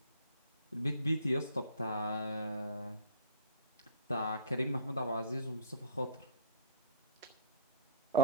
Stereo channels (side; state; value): both; inverted; correlation -0.47